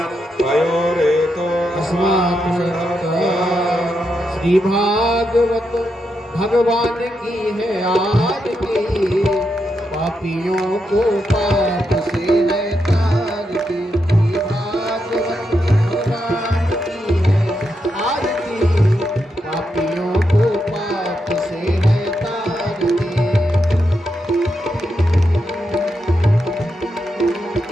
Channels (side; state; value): both; normal; correlation 0.84